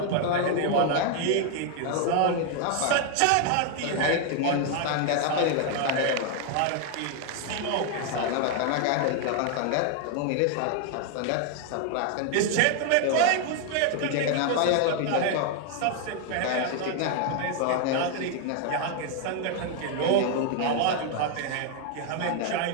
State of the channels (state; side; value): different; both; correlation 0.00